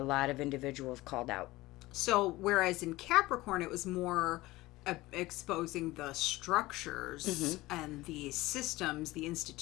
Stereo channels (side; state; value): right; quieter; 19.1 dB